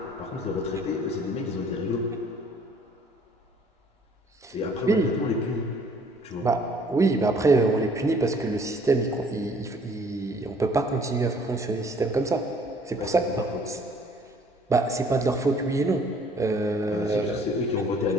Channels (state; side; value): normal; both; correlation 0.58